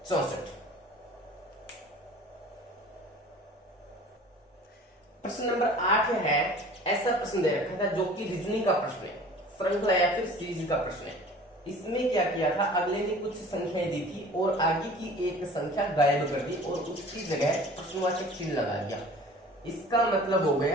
प्रश्न नंबर 8 है, ऐसा प्रश्न दे रखा था जो कि रीजनिंग का प्रश्न है, श्रृंखला या फिर सीरीज का प्रश्न है। इसमें क्या किया था, अगले ने कुछ संख्याएं दी थी और आगे की एक संख्या गायब कर दी और उसकी जगह प्रश्नवाचक चिन्ह लगा दिया। इसका मतलब हो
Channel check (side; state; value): both; normal; correlation 0.45